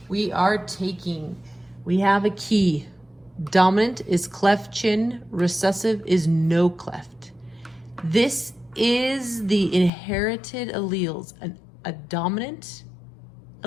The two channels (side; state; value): right; drops out; at 9.9 s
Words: We have a key. Dominant is cleft chin, recessive is no cleft. This is the inherited alleles, a dominant